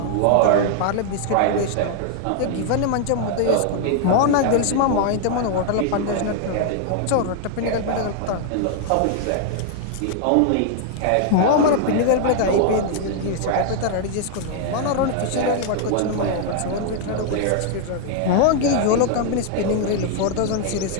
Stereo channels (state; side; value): different; both; correlation 0.00